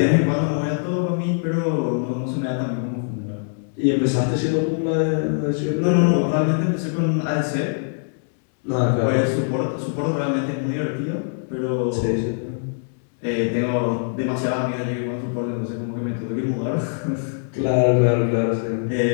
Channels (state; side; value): silent; right; digital silence